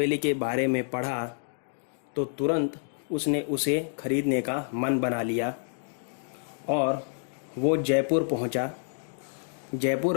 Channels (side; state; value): right; silent; digital silence